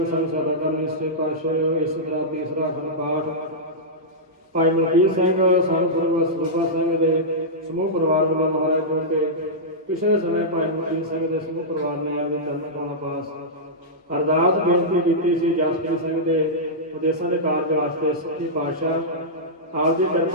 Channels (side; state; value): both; normal; correlation -0.12